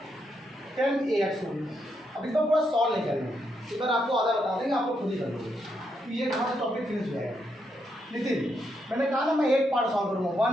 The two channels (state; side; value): normal; both; correlation 0.80